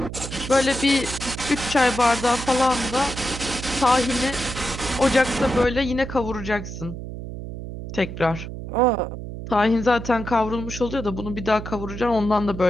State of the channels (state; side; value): noise; right; hum, 9 dB below the sound